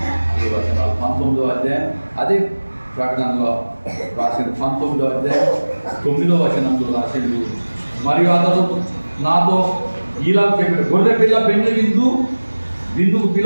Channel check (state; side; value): inverted; both; correlation -1.00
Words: అదే వచనాలు 19వ అధ్యాయం, అదే ప్రకటనలో రాసిన 19వ అధ్యాయం 9వ వచనంలో రాసిండు. మరియు అతడు నాతో ఇలా చెప్పాడు, గొర్రె పిల్ల పెండ్లి విందుకు